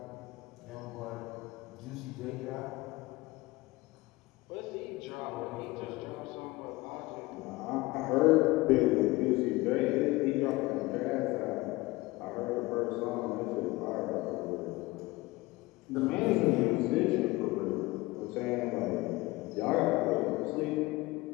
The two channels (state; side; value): quieter; right; 21.2 dB